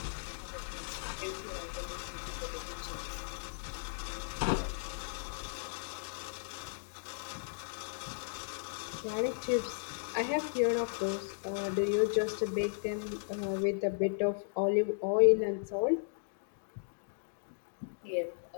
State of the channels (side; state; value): right; silent; digital silence